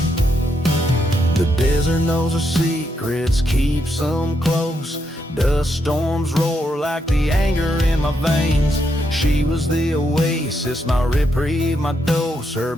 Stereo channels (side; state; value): both; normal; correlation 0.80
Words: The desert knows her secrets, keeps them close. Dust storms roar like the anger in my veins. She was the oasis, my reprieve, my dose. Her